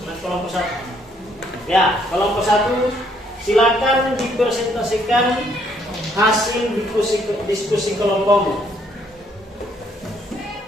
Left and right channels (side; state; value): both; normal; correlation 0.68